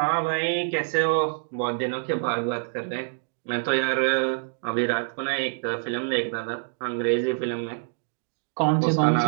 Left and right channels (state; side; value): silent; left; digital silence